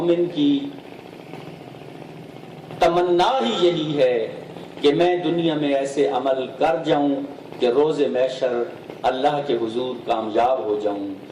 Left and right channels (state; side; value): identical; both; correlation 1.00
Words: کی تمنا ہی یہی ہے کہ میں دنیا میں ایسے عمل کر جاؤں کہ روز محشر اللہ کے حضور کامیاب ہو جاؤں۔